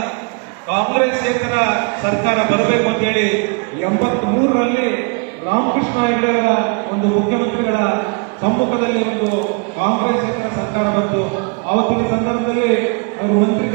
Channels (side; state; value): left; quieter; 34.7 dB